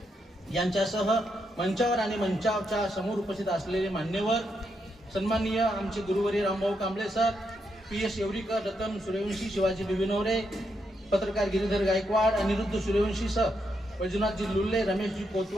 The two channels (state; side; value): normal; both; correlation 0.81